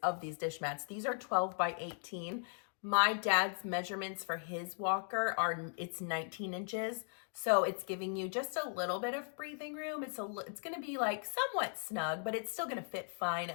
of these dish mats. These are 12 by 18. My dad's measurements for his walker it's 19 inches. So it's giving you just a little bit of breathing room. It's going to be like somewhat snug, but it's still going to fit fine,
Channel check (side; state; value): right; silent; 53 dB below the other